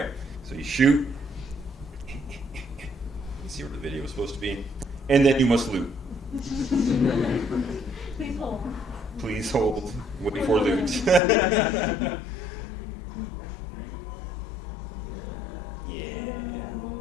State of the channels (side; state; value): right; drops out; at 11.2 s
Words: So you shoot. See where the video was supposed to be, and then you must loot. Please hold. Please hold. Wait for loot. Yeah.